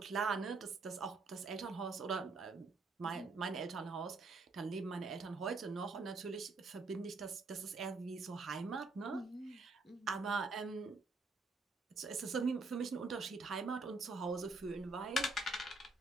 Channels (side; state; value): left; quieter; 3.5 dB